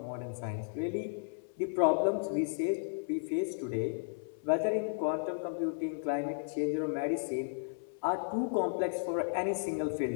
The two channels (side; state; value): right; silent; 55 dB below the other